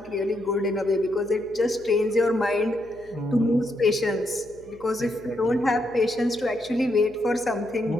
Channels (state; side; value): noise; left; hum, 26 dB below the sound